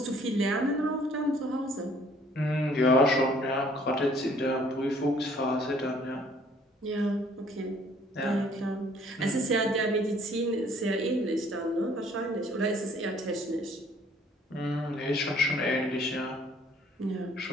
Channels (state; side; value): normal; both; correlation 0.59